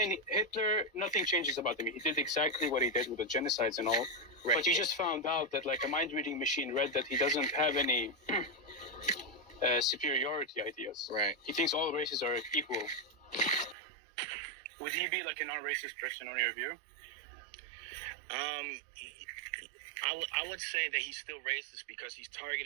Hitler, nothing changes about him. He did exactly what he did with the genocides and all. Right. But you just found out that like a mind-reading machine read that he doesn't have any superiority ideas. Right. He thinks all races are equal. Would he be like a non-racist person on your view? I would say that he's still racist because he's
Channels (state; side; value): drops out; left; at 13.8 s